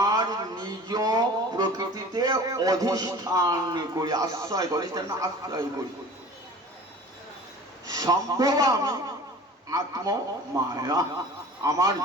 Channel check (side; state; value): both; normal; correlation 0.41